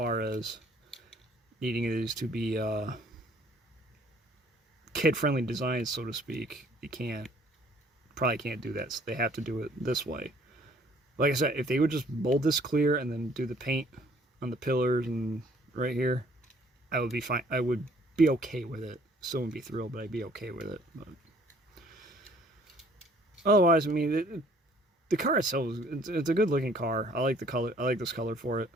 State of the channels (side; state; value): both; normal; correlation 0.59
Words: as needing these to be kid-friendly designs, so to speak, you probably can't do that. So they have to do it this way. Like I said, if they would just mold this clear and then do the paint on the pillars and right here, I would be fine. I would be okay with it. Still wouldn't be thrilled, but I'd be okay with it. But otherwise, I mean, the car itself, it's a good looking car. I like the color. I like this color for it.